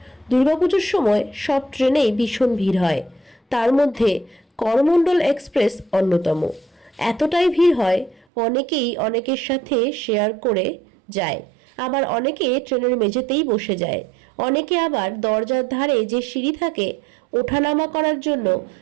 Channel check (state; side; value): drops out; left; at 8.2 s